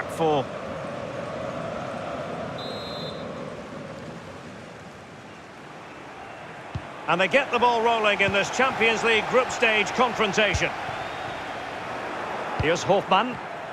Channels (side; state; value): both; identical; correlation 1.00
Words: four. And they get the ball rolling in this Champions League group stage confrontation. Here's Hofmann.